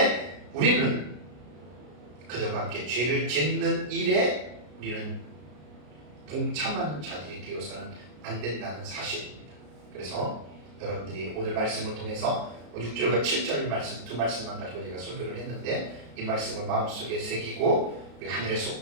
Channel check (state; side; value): late; left; 33 ms